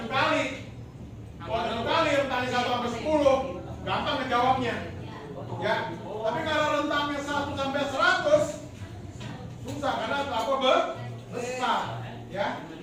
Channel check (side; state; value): both; identical; correlation 1.00